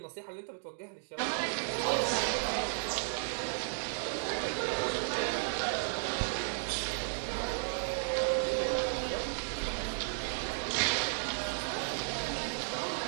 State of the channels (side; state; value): left; silent; digital silence